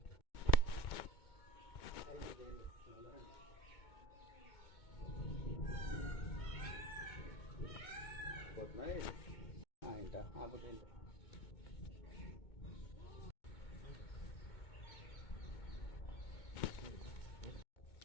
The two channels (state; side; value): late; right; 2.2 ms